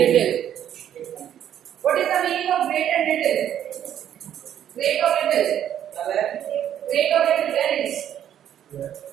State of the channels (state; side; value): quieter; left; 10.3 dB